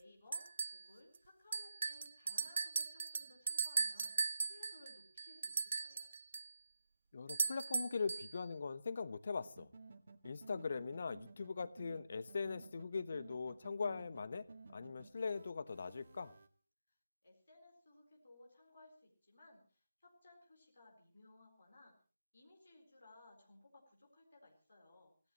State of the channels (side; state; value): both; inverted; correlation -0.88